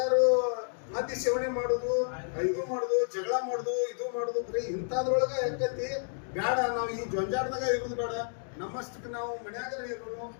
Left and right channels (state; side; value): silent; right; digital silence